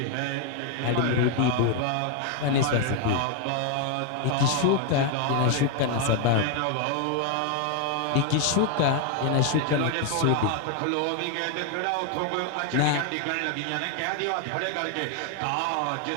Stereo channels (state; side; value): different; both; correlation 0.01